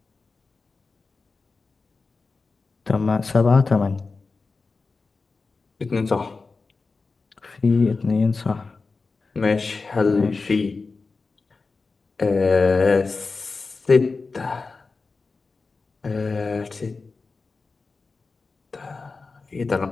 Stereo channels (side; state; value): right; quieter; 4.1 dB